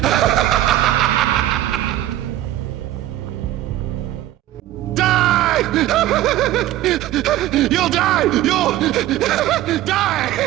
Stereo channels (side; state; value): left; quieter; 14.1 dB